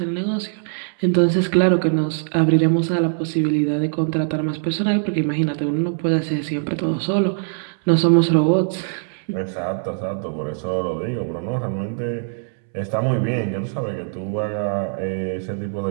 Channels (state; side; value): silent; left; 65 dB below the other